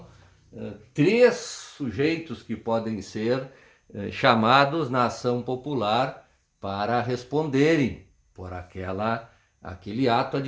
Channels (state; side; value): identical; both; correlation 1.00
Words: 3 sujeitos que podem ser chamados na ação popular para responderem por aquele ato